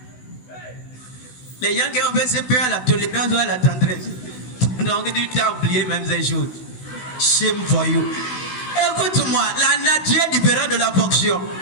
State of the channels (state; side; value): late; right; 16 ms